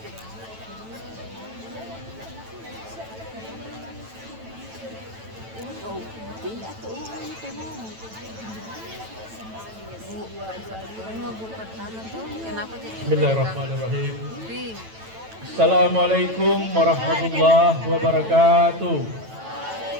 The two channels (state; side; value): late; left; 9.1 ms